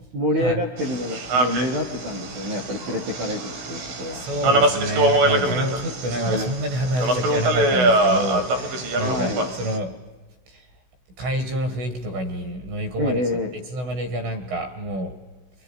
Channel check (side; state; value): left; late; 16 ms